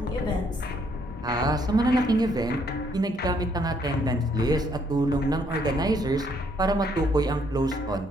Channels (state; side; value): normal; both; correlation 0.69